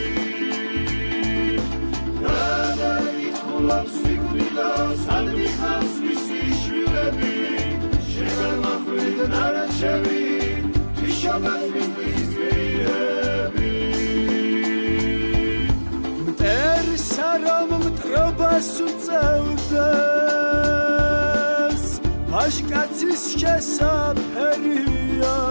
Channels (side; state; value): both; inverted; correlation -1.00